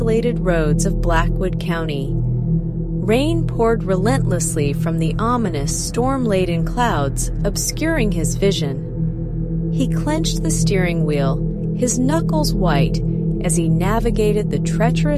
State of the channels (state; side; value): identical; both; correlation 1.00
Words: roads of Blackwood County. Rain poured relentlessly from the ominous, storm-laden clouds, obscuring his vision. He clenched the steering wheel, his knuckles white, as he navigated the